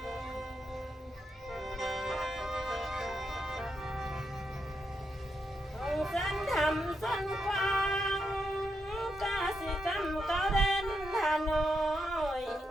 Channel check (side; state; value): both; normal; correlation 0.83